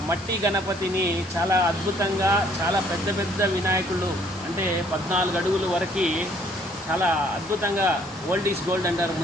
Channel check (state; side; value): normal; both; correlation 0.62